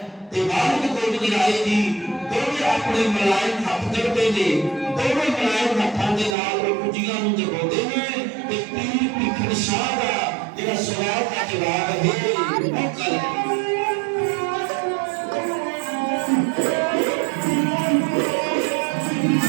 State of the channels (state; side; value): drops out; left; at 6.4 s